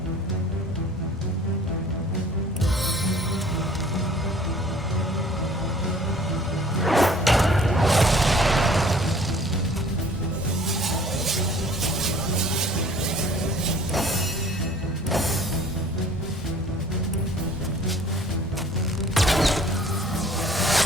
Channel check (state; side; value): normal; both; correlation 0.52